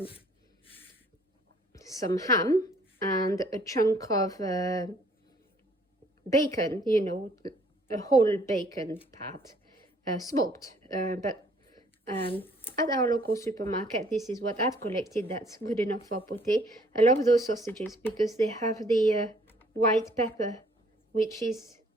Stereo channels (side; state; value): both; normal; correlation 0.61